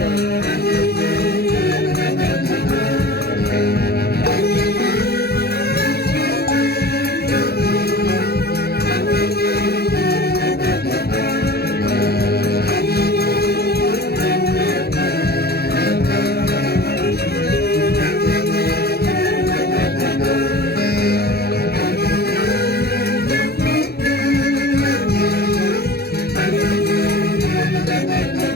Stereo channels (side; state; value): right; late; 0.46 ms